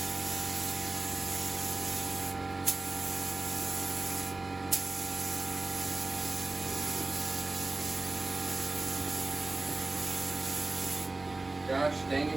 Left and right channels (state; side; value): quieter; left; 3.2 dB